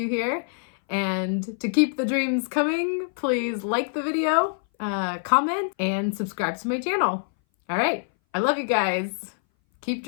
here. And to keep the dreams coming, please like the video, comment, and subscribe to my channel. All right. I love you guys. Keep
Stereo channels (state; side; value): silent; right; 59 dB below the other